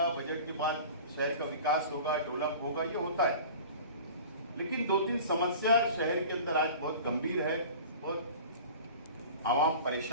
बजट के बाद शहर का विकास होगा, डेवलप होगा, ये होता है, लेकिन 2-3 समस्या शहर के अंदर आज बहुत गंभीर है, बहुत आवाम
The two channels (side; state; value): both; inverted; correlation -0.40